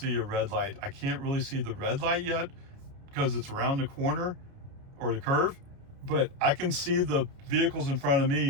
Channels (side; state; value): left; late; 29 ms